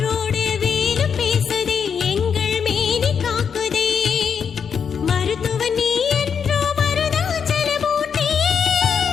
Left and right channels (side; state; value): right; quieter; 6.9 dB